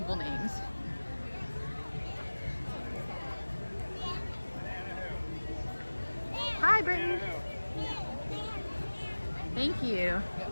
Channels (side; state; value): both; inverted; correlation -1.00